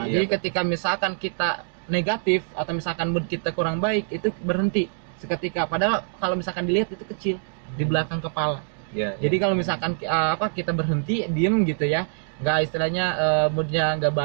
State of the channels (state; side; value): silent; left; digital silence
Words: Jadi ketika misalkan kita negatif atau misalkan mood kita kurang baik, itu berhenti seketika. Padahal kalau misalkan dilihat itu kecil di belakang kepala. Jadi kalau misalkan kita berhenti diem gitu ya, nggak istilahnya moodnya nggak